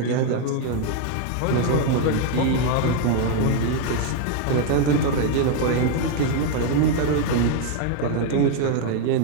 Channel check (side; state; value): both; different; correlation 0.01